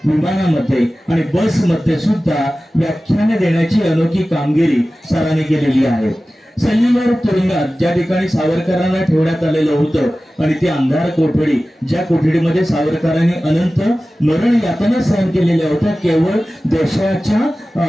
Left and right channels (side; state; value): both; normal; correlation 0.96